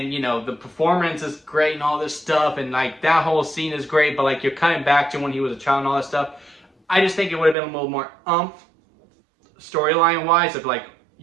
the performance is great and all this stuff, and like that whole scene is great, but like you're cutting back to when he was a child and all that stuff. I just think it would have been a little more storyline wise, of like,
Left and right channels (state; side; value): drops out; left; at 7.6 s